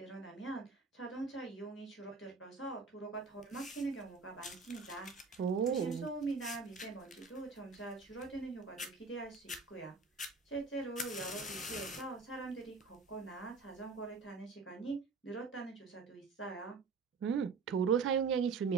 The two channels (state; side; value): quieter; left; 4.8 dB